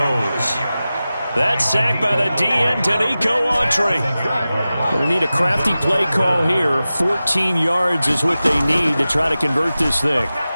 That sack by the DN, Danico Autry. Going to need a crafty play call here. 14 yards is what they need to try to convert this thing.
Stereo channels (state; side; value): inverted; both; correlation -0.95